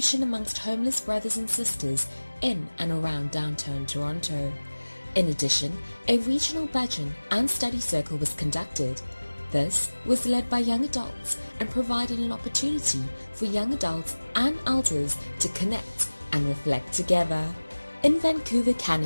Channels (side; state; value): both; inverted; correlation -1.00